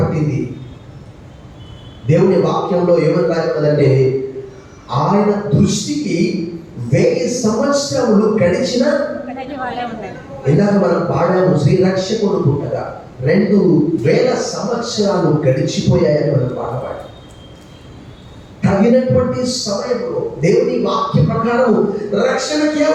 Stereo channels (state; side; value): identical; both; correlation 1.00